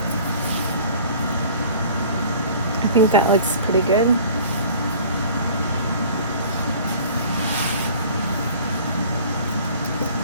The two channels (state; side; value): inverted; both; correlation -0.47